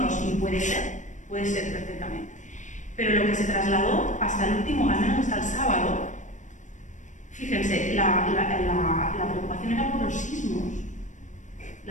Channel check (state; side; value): late; right; 0.36 ms